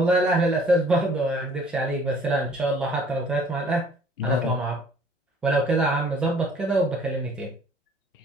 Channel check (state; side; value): normal; both; correlation 0.56